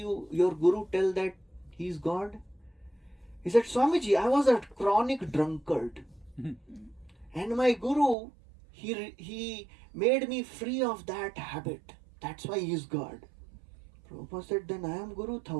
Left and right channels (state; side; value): drops out; left; at 8.2 s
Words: guru tell that he is God? He said, Swamiji, I was a chronic drunkard. And my guru, he made me free of that habit. That's why he is God. Prabhupada said, then I am guru